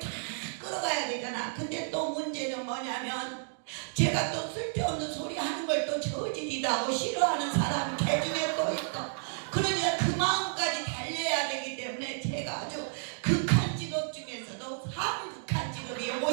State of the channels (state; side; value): silent; left; digital silence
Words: 끌어가야 되잖아. 근데 또 문제는 뭐냐면 제가 또 쓸데없는 소리 하는 걸 또 저질이다 하고 싫어하는 사람 개중에 또 있고, 그러니까 그 마음까지 달려야 되기 때문에 제가 아주 극한 직업 중에서도 극한 직업이